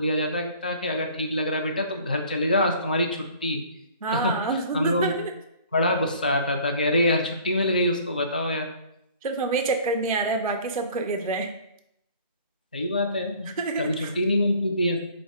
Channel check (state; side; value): inverted; both; correlation -0.51